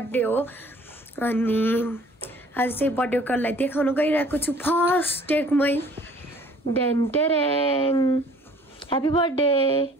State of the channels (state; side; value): normal; both; correlation 0.54